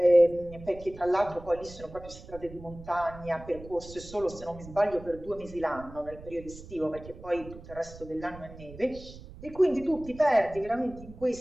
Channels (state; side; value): noise; right; rumble, 16 dB below the sound